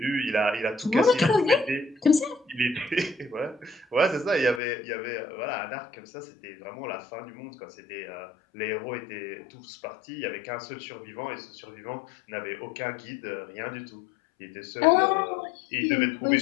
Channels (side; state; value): right; drops out; at 4.6 s